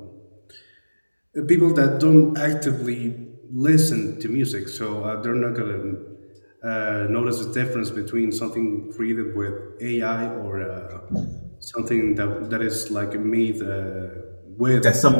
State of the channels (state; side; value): inverted; both; correlation -1.00